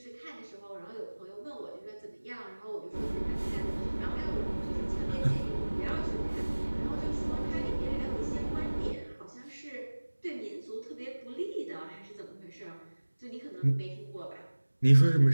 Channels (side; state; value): both; inverted; correlation -1.00